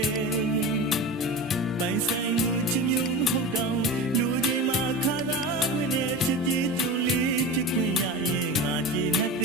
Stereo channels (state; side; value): normal; both; correlation 0.29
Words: ပိုင်ဆိုင်လူချစ်မျိုးမဟုတ်တော့လူချင်းမှာခါသာခွင့်နဲ့ချစ်ကြည်တူလေးချစ်ခွင့်ရရင်ငါကြည်နဲ့သ